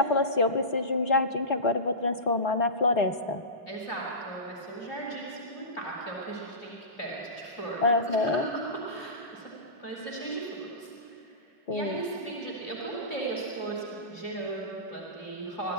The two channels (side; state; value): right; late; 2.9 ms